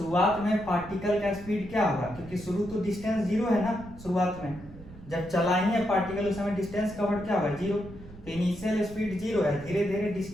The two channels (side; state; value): right; noise; rumble, 18 dB below the sound